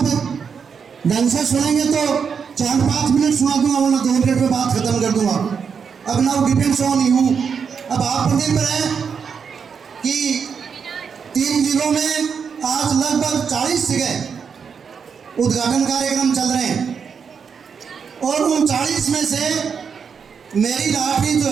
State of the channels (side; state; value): left; quieter; 6.4 dB